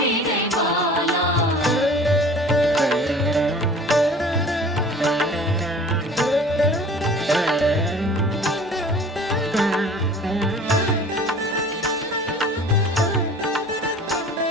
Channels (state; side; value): normal; both; correlation 0.45